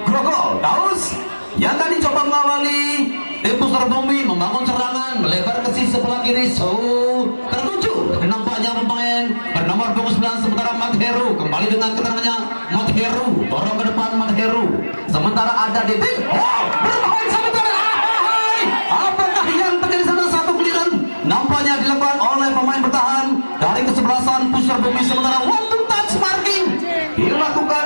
Grogol. Daus yang tadi coba mengawali tim Pusar Bumi membangun serangan melebar ke sisi sebelah kiri. Tertuju nampaknya pemain bernomor punggung 9 sementara Mat Heru kembali dengan keterangannya. Mat Heru dorong ke depan Mat Heru. Sementara ada Didik. Berbahaya sementara. Apakah yang terjadi sana? Satu giliran nampaknya dilakukan oleh pemain bertahan dari kesebelasan Pusar Bumi, sementara one to touch marking dilakukan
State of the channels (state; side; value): inverted; both; correlation -1.00